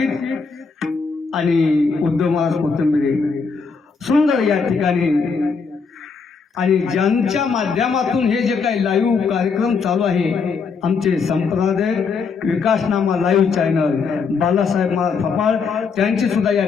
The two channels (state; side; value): quieter; right; 5.2 dB